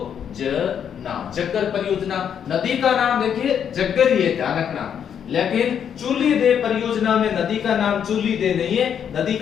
जग्गर परियोजना, नदी का नाम देखिए जग्गर ही है, ध्यान रखना। लेकिन चूली दे परियोजना में नदी का नाम चूली दे नहीं है, नदी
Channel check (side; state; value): right; quieter; 8.3 dB